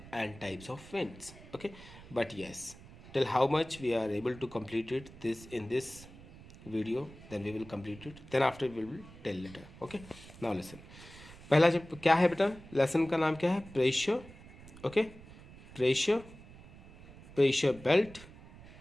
and types of winds. Okay, but yes, till how much we are able to complete it this in this video, then we will complete it. Then after we will tell later. Okay, now listen. पहला जब क्या है बेटा, lesson का नाम क्या है? Pressure. Okay, pressure, pressure belt.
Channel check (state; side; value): noise; right; rumble, 18 dB below the sound